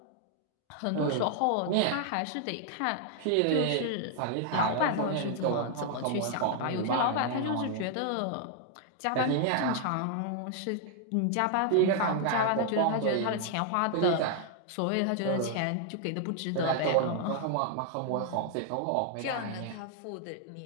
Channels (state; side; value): different; both; correlation 0.00